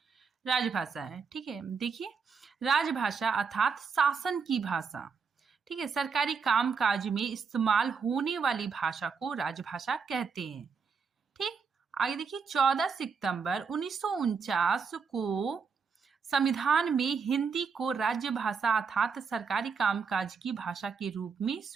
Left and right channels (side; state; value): left; quieter; 5.6 dB